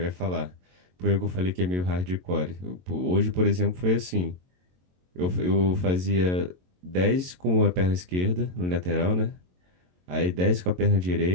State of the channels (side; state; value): left; late; 22 ms